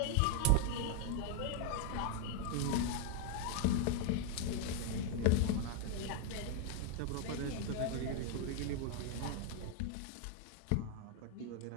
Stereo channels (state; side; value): different; both; correlation 0.00